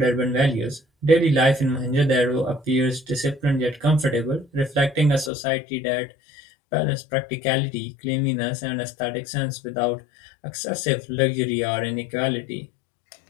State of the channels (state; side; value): drops out; right; at 5.3 s